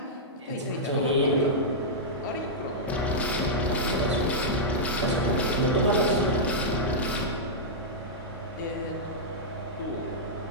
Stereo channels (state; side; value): normal; both; correlation -0.09